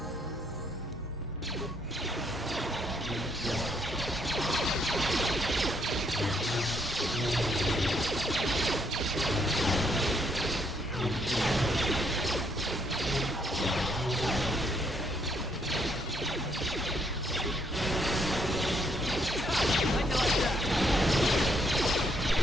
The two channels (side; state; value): both; normal; correlation 0.72